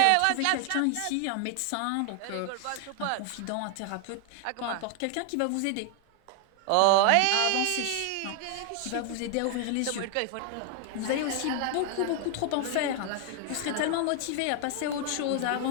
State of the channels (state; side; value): different; both; correlation 0.00